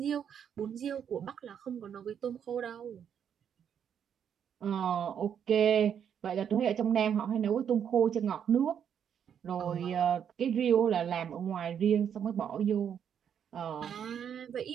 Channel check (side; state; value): left; quieter; 8.4 dB